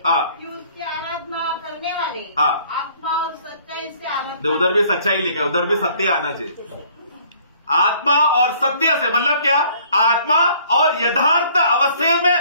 उसकी आराधना करने वाले आत्मा और सच्चाई से आराधना. उधर भी सच्चाई लिखा है, उधर भी सत्य आना चाहिए. आत्मा और सत्य से मतलब क्या? आत्मा और यथार्थ अवस्थे में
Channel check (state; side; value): inverted; both; correlation -0.58